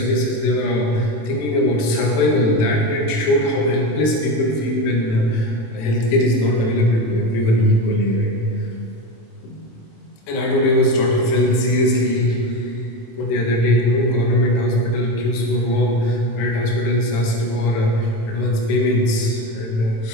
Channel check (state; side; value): late; right; 27 ms